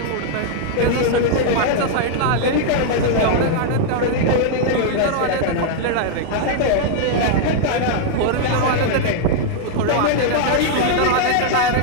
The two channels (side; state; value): both; different; correlation -0.01